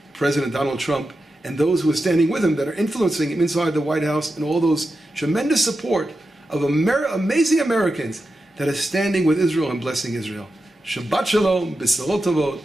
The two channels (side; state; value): both; normal; correlation 0.90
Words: President Donald Trump and those who are standing with him that are influencing him inside the White House, and all those tremendous support of amazing Americans that are standing with Israel and blessing Israel. Shabbat Shalom, B'Sarot Tovot,